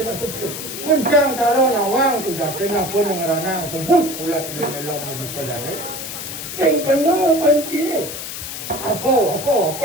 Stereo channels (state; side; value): noise; left; hiss, 8 dB below the sound